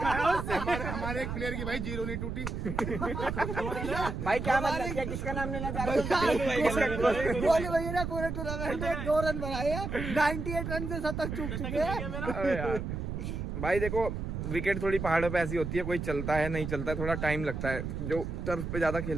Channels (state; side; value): noise; right; rumble, 4 dB below the sound